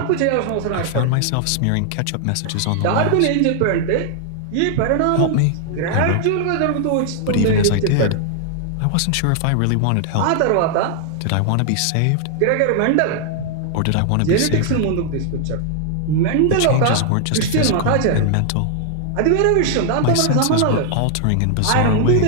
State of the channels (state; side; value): different; both; correlation 0.00